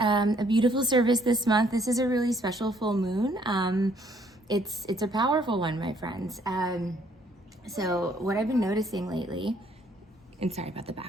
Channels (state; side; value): normal; both; correlation 0.65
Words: beautiful service this month. This is a really special full moon. It's a powerful one, my friends. So what I've been noticing lately. And sorry about the